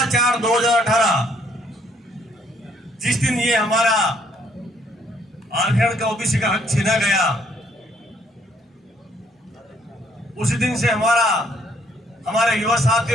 जिस दिन ये हमारा आरक्षण का ओबीसी का हक छीना गया, उसी दिन से हमारे युवा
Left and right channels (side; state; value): both; normal; correlation 0.67